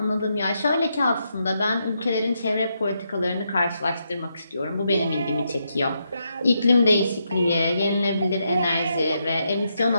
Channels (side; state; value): both; inverted; correlation -0.81